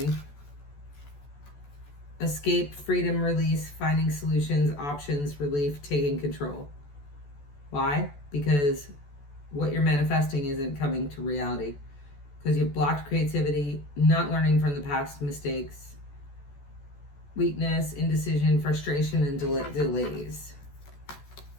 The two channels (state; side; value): late; right; 14 ms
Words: Escape, freedom, release, finding solutions, options, relief, taking control. Why? Because what you're manifesting isn't coming to reality. Because you've blocked creativity, not learning from the past mistakes, weakness, indecision, frustration, and delays.